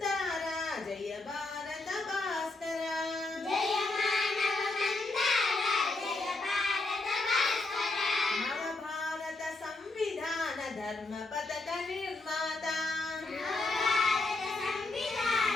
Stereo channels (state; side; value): quieter; right; 3.2 dB